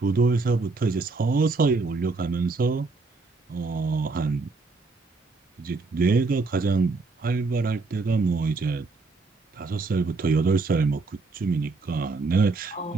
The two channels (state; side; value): quieter; left; 3.8 dB